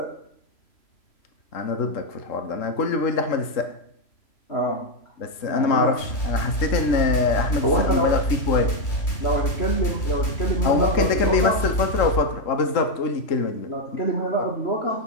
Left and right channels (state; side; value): late; right; 3.0 ms